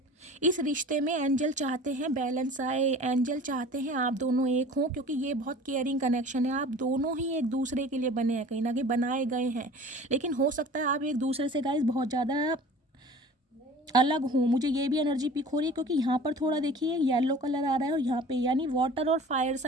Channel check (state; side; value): normal; both; correlation 0.43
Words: इस रिश्ते में एंजल चाहते हैं बैलेंस आए, एंजल चाहते हैं आप दोनों एक हों, क्योंकि ये बहुत केयरिंग कनेक्शन है। आप दोनों ही एक दूसरे के लिए बने हैं, कहीं ना कहीं बनाए गए हैं। लेकिन हो सकता है आप एक दूसरे से गाइस बहुत ज़्यादा अलग हूँ, मुझे ये भी एनर्जी पिक हो रही है, क्योंकि यहाँ पर थोड़ा देखिए येलो कलर आ रहा है और यहाँ पे, यानी वाटर और फायर